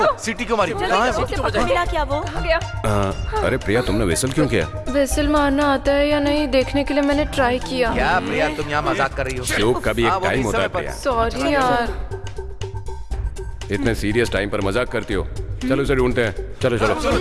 सिटी को मारी। मिला क्या वो? अरे प्रिया, तुमने विसल क्यों किया? विसल मारना आता है या नहीं देखने के लिए मैंने ट्राई किया। क्या प्रिया, तुम यहाँ मजाक कर रही हो? शोक का भी एक टाइम होता है प्रिया। सॉरी यार। इतने सीरियस टाइम पर मजाक करती हो। चलो उसे ढूंढते हैं। चलो चलो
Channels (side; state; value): both; identical; correlation 1.00